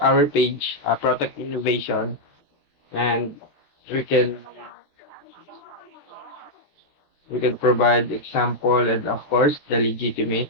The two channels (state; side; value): late; right; 13 ms